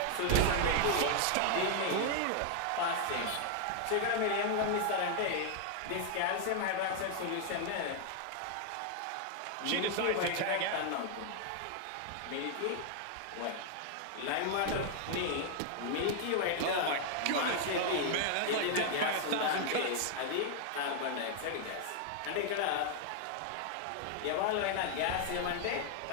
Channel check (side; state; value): both; different; correlation 0.00